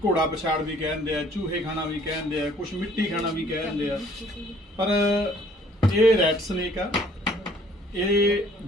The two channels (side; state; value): both; normal; correlation 0.58